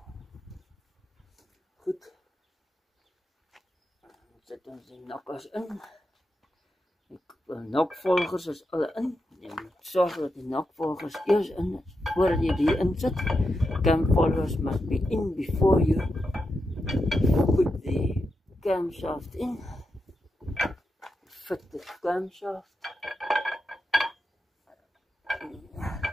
Goed. Dan zet ons die nokkers in. Die nokvolgers is alle in. Je moet zorgen dat die nakvolgers eerst in, voordat je die inzet. Cam followers must be in before you put the camshaft in. Fit the camshaft.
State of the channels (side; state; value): both; normal; correlation 0.87